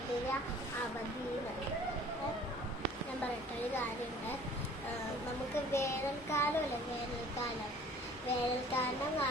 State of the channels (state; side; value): normal; both; correlation 0.51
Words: അവധി. ഞാൻ പറയട്ടെ ഒരു കാര്യമുണ്ട്. നമുക്ക് വേനൽക്കാലമല്ലേ, വേനൽക്കാലം